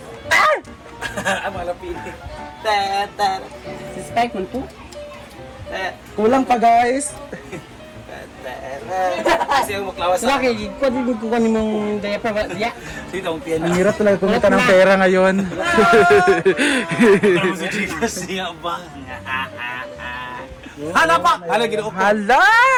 Ang malapili. Suspect mo po? Kulang pa guys. Kasi ang maklawas sa akin. Kung di ko kanin mong diaper ba? Dito ang piano. Ang hirap talaga kumita ng pera ngayon. Si Gcash niya ba? Hala pa! Hala, ginoo ko. Hala!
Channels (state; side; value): identical; both; correlation 1.00